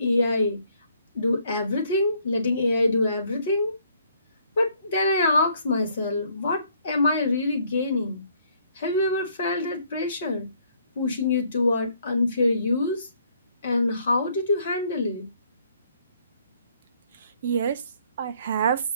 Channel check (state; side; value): inverted; both; correlation -0.66